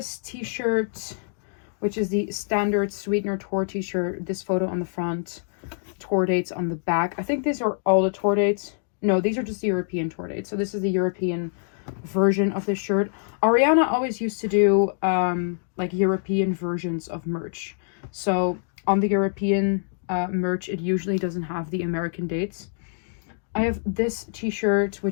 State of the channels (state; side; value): silent; right; digital silence